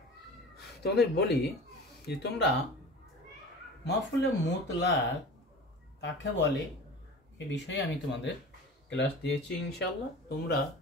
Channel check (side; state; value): both; normal; correlation 0.37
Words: তোমাদের বলি যে তোমরা মাফুলে মুতলাক কাকে বলে এ বিষয়ে আমি তোমাদের ক্লাস দিয়েছি ইনশাআল্লাহ। তোমরা